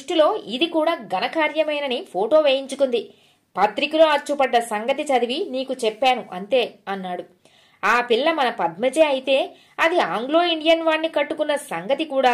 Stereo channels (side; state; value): both; identical; correlation 1.00